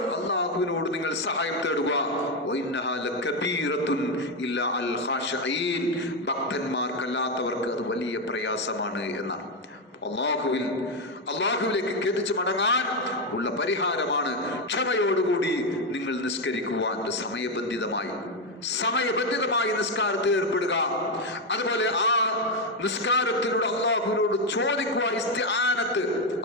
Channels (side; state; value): both; normal; correlation 0.07